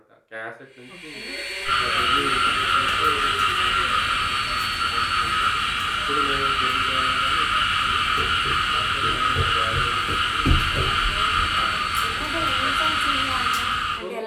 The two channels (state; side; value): identical; both; correlation 1.00